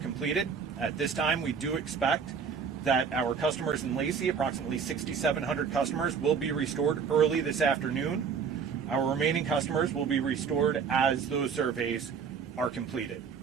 At this time, we do expect that our customers in Lacey, approximately 6,700 customers, will be restored early this afternoon. Our remaining customers will be restored as those surveys are completed.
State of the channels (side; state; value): left; quieter; 6.3 dB